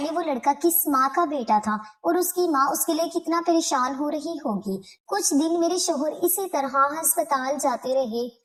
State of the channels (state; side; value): identical; both; correlation 1.00